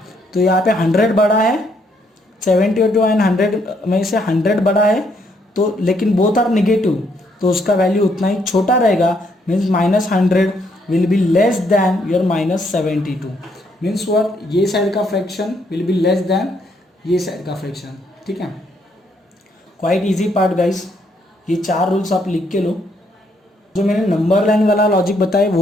तो यहाँ पे 100 बड़ा है, 72 एंड 100 में से 100 बड़ा है तो, लेकिन बोथ आर नेगेटिव तो उसका वैल्यू उतना ही छोटा रहेगा. Means -100 will be less than your -72. Means what, ये साइड का fraction will be less than ये साइड का फ्रैक्शन. ठीक है, क्वाइट इजी पार्ट गाइस. ये 4 रूल्स आप लिख के लो. जो मैंने नंबर लाइन वाला लॉजिक बताया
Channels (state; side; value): normal; both; correlation 0.72